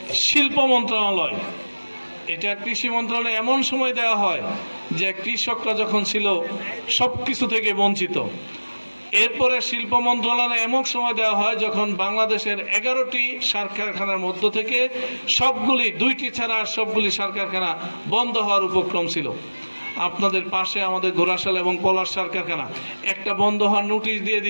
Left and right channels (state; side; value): inverted; both; correlation -1.00